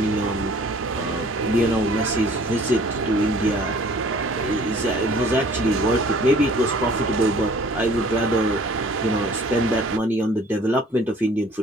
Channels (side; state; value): both; normal; correlation 0.53